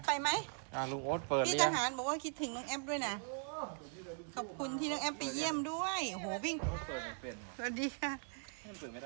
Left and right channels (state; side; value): silent; left; 51 dB below the other